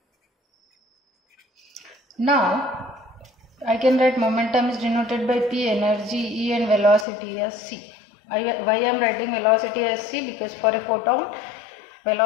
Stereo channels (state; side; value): drops out; right; at 7.1 s